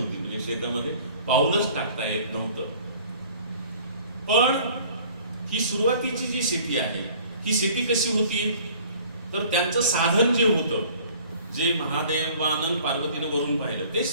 म्हणजे शेतामध्ये पाऊलच टाकता येत नव्हतं. पण ही सुरुवातीची जी शेती आहे ही शेती कशी होती, तर त्यांचं साधन जे होतं, जे महादेवानं पार्वतीनं वरून पाहिलं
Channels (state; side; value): inverted; both; correlation -0.51